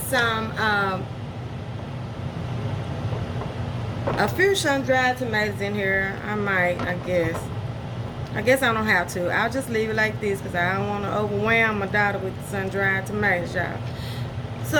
some, a few sun-dried tomatoes in here. I guess. I don't have to. I'll just leave it like this because I don't want to overwhelm my daughter with sun-dried tomatoes, y'all. So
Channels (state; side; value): identical; both; correlation 1.00